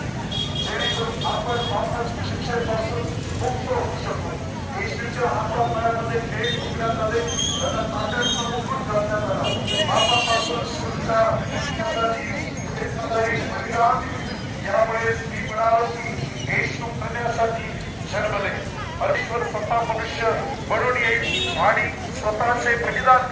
जेणेकरून आपण वापस शिक्षेपासून मुक्त होऊ शकतो. येशूच्या हातापायामध्ये खेळ शिकण्यात आले, त्यांना ताकदीचा मुकुट घालण्यात आला. पापापासून सुटका यामुळे मी म्हणालो की येशू करण्यासाठी जन्मले. परमेश्वर स्वतः मनुष्य बनून येईल आणि स्वतःचे बलिदान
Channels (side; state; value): both; identical; correlation 1.00